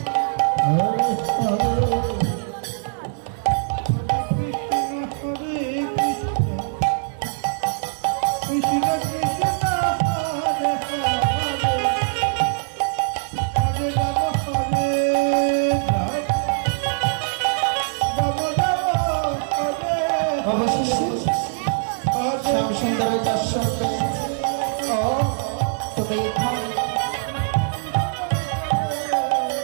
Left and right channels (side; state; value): left; silent; digital silence